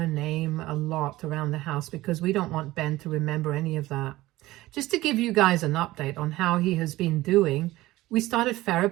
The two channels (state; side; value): quieter; left; 17.7 dB